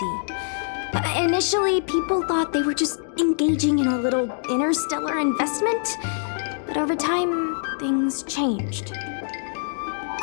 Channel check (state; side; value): silent; right; digital silence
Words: Initially, people thought they were just engaging in a little interstellar investment, but over time, things changed.